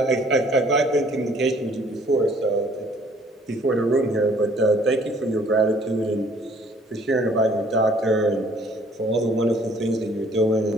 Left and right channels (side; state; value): both; normal; correlation 0.58